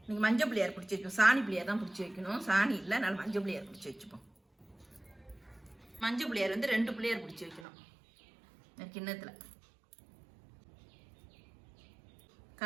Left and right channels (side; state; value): left; drops out; at 7.7 s